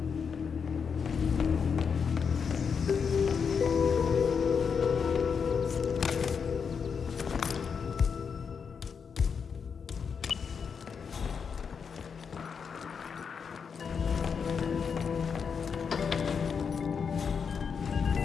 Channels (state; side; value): quieter; right; 6.3 dB